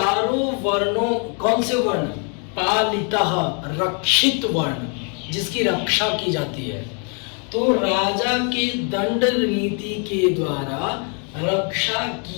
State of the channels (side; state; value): right; quieter; 38.9 dB